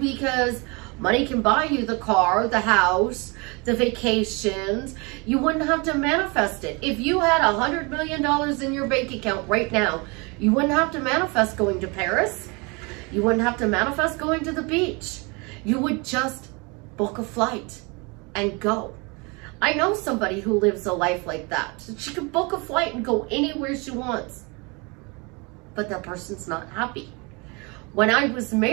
money can buy you the car, the house, the vacations. You wouldn't have to manifest it. If you had $100 million in your bank account right now, you wouldn't have to manifest going to Paris. You wouldn't have to manifest going to the beach. You would just book a flight and go. I know somebody who lives a life like that. She can book a flight and go anywhere she wants, but that person's not happy. When I was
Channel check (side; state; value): left; quieter; 29.1 dB